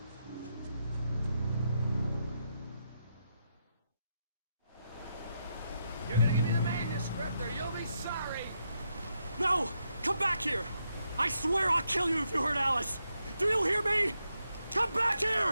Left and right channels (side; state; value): both; inverted; correlation -0.82